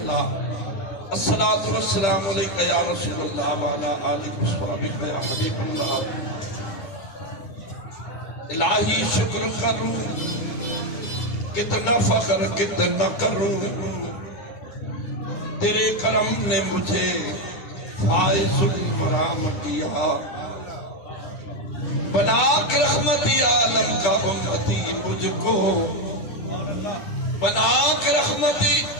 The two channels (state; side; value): late; right; 9.9 ms